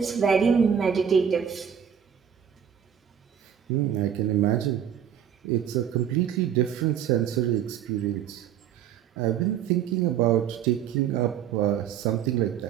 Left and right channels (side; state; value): left; quieter; 8.8 dB